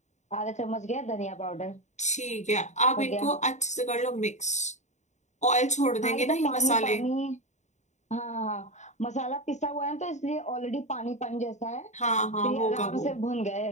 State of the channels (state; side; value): late; right; 0.34 ms